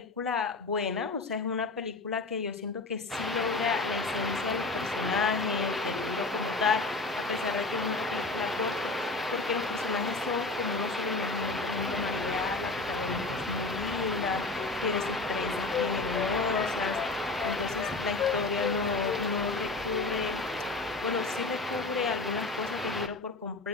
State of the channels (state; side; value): quieter; right; 3.4 dB